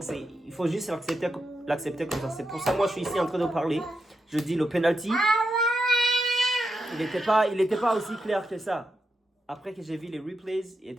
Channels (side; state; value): both; normal; correlation 0.85